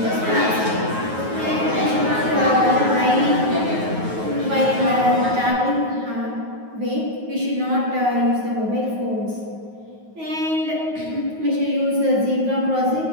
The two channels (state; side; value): late; left; 9.4 ms